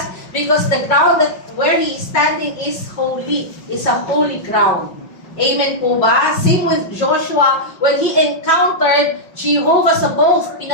because the ground that where he is standing is holy, is a holy ground. Amen po ba? Same with Joshua, when he encountered Jehovah Sabaoth,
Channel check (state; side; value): late; right; 5.5 ms